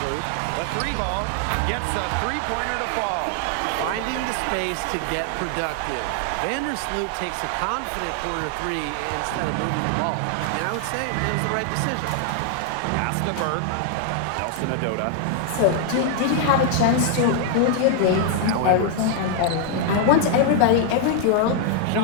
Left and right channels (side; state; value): both; different; correlation 0.00